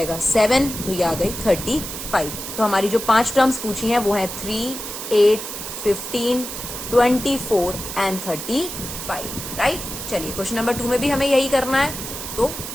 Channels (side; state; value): right; noise; hiss, 8 dB below the sound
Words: 7, तो ये आ गई 35। तो हमारी जो 5 टर्म्स पूछी हैं वो है 3, 8, 15, 24 एंड 35, राइट। चलिए क्वेश्चन नंबर 2 में भी हमें यही करना है, तो